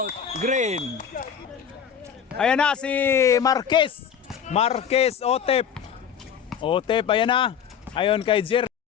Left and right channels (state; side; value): quieter; right; 8.0 dB